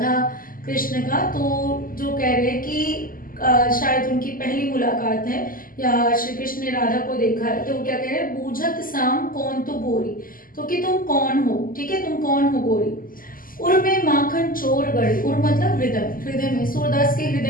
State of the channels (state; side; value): late; right; 0.41 ms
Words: कृष्ण का। तो जो कह रहे हैं कि शायद उनकी पहली मुलाकात है या श्री कृष्ण ने राधा को देखा है, तो क्या कह रहे हैं? बूझत श्याम कौन तू गोरी, तो कि तुम कौन हो, ठीक है, तुम कौन हो गोरी। उर में माखन चोर गड़े, उर मतलब हृदय, हृदय में, सूरदास के